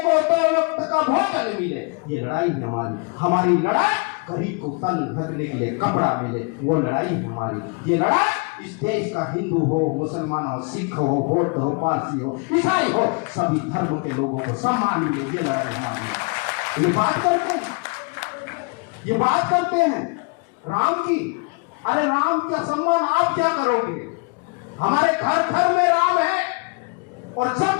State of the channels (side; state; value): right; quieter; 33.8 dB